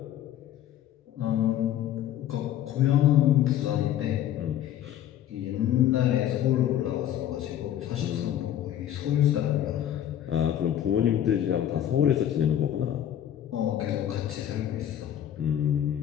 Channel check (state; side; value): quieter; right; 11.1 dB